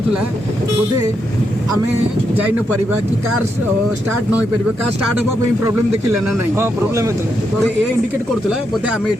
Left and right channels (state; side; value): normal; both; correlation 0.81